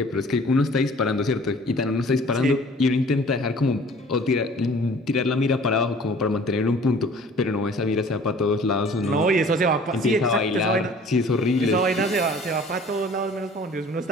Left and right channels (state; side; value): normal; both; correlation 0.50